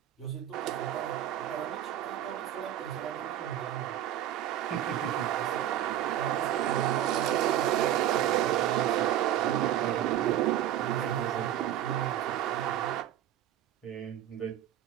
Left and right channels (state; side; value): quieter; left; 11.7 dB